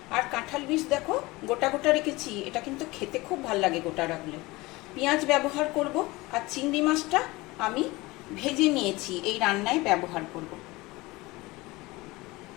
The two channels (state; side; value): quieter; right; 21.6 dB